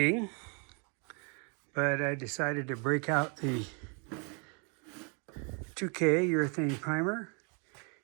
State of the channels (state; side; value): quieter; left; 36.1 dB